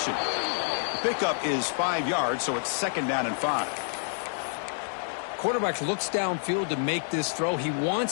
The pickup is 5 yards, so it's 2nd down and 5. Quarterback looks downfield to make this throw. He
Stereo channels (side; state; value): right; silent; digital silence